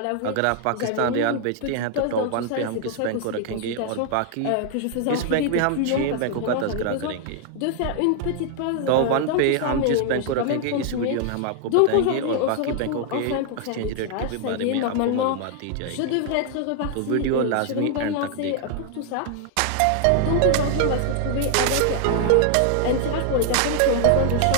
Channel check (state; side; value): different; both; correlation 0.00